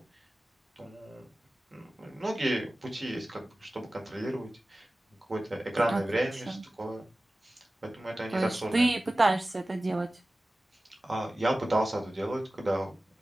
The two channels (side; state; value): both; normal; correlation 0.97